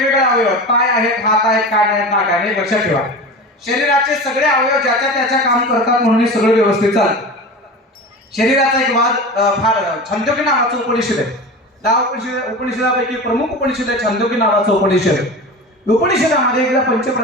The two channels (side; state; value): both; normal; correlation 0.31